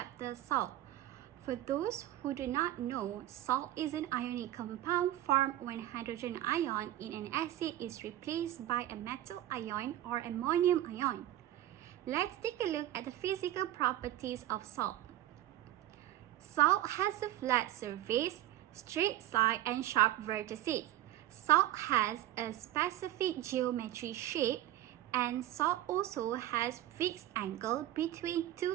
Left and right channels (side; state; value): left; quieter; 13.5 dB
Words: salt. For those who do not know, salt is an ionic compound formed when hydrogen ion in an acid is replaced by a metal ion or ammonium ion. Let's take a look at the physical properties of salt. Salt has a flat surface, straight side and sharp vertices. Salt has a specific geometry shape, and salt also has fixed angle between